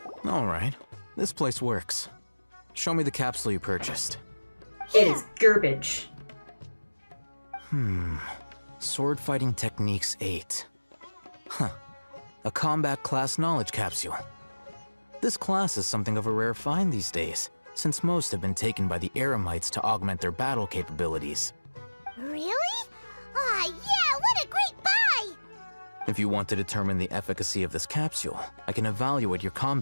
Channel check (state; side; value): inverted; both; correlation -1.00